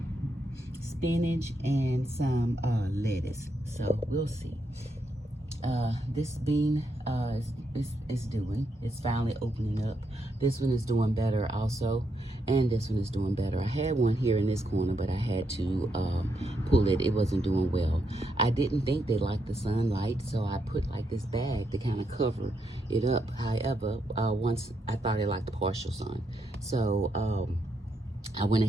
spinach, and some lettuce. So we'll see. This bean it's finally opening up. This one is doing better also, and this one is doing better. I had one here in this corner, but I had to pull it. It wasn't doing well. I didn't think they liked the sunlight, so I put like this bag to kind of cover it up. However, once I thought they liked the partial sun, so I went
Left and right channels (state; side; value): normal; both; correlation 0.80